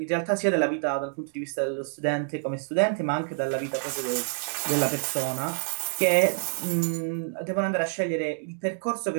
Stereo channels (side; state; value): left; silent; 60 dB below the other